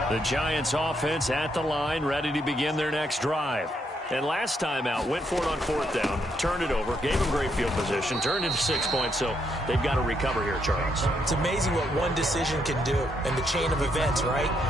The Giants offense at the line, ready to begin their next drive. And last time out, went for it on 4th down, turned it over, gave them great field position, turned into 6 points, so they've got to recover here, Charles. It's amazing what one decision can do in the chain of events, right?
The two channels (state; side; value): normal; both; correlation 0.76